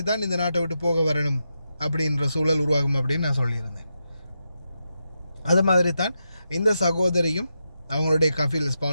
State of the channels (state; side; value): inverted; both; correlation -0.86